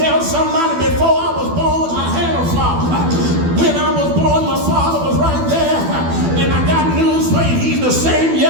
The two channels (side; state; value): left; late; 12 ms